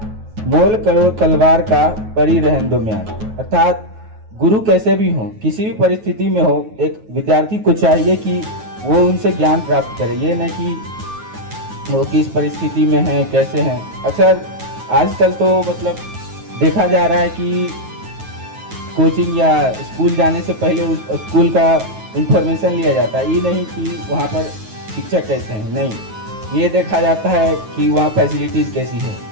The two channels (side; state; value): left; late; 9.3 ms